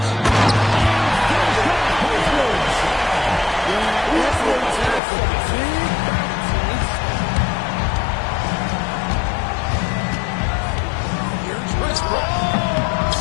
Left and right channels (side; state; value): right; drops out; at 5.0 s